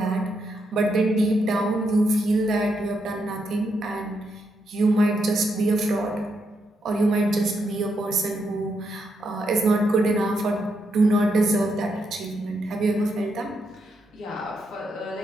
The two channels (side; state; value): both; normal; correlation 0.81